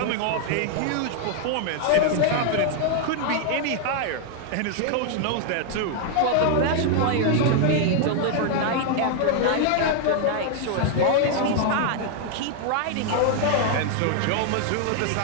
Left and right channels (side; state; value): both; different; correlation 0.00